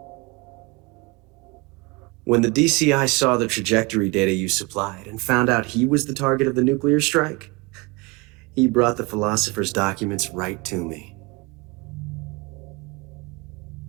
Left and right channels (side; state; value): left; quieter; 26.2 dB